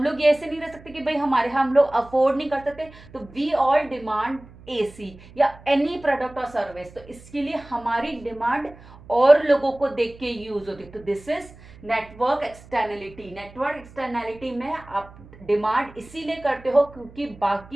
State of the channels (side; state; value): right; noise; hum, 21 dB below the sound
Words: लोग ये ऐसे नहीं रह सकते कि भाई हम लोग अफोर्ड नहीं कर सकते, तो वी ऑल डिमांड एसी या एनी प्रोडक्ट और सर्विस, तो इसके लिए हमारी डिमांड और लोगों को देख के यूज होती है। तो this is network externality. Network externality में आप डिमांड इसीलिए करते हो क्योंकि